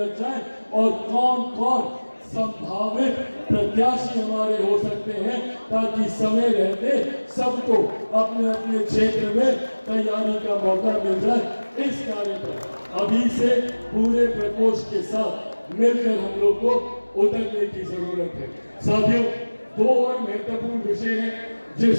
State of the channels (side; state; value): both; inverted; correlation -1.00